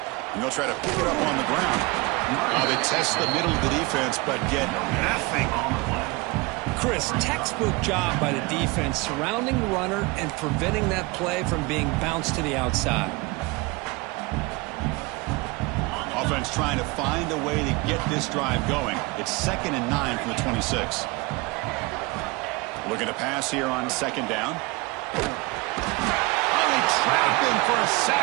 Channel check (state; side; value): quieter; left; 24.9 dB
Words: And they'll try to pick it up on the ground. They test the middle of the defense, but get nothing. Chris, textbook job by the defense surrounding the runner and preventing that play from being bounced to the outside. Offense trying to find a way to get this drive going. It's 2nd and 9 from the 26. Looking to pass here on 2nd down. Oh, they trap him for a